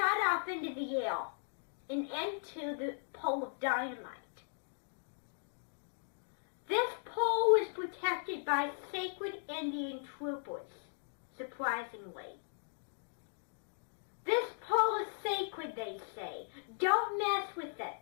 off into the air and into the pole of dynamite. This pole is protected by sacred Indian troopers, surprisingly. This pole is sacred, they say. Don't mess with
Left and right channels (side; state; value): right; silent; digital silence